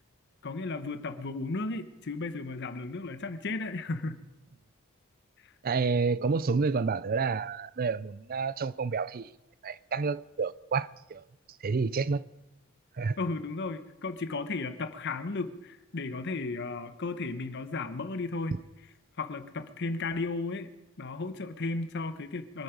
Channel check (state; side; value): normal; both; correlation 0.30